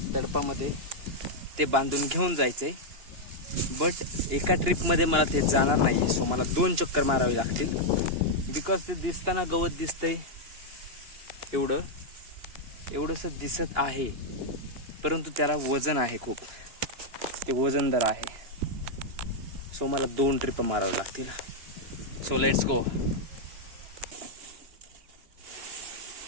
तडपामध्ये ते बांधून घेऊन जायचं आहे. बट एका ट्रिपमध्ये मला ते जाणार नाही आहे. सो मला 2 चक्कर मारावे लागतील. बिकॉज ते दिसताना गवत दिसतंय एवढंसं दिसत आहे, परंतु त्याला वजन आहे खूप. ते वजनदार आहे. सो मला 2 ट्रिप मारावे लागतील. So let's go.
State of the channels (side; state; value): left; late; 2.9 ms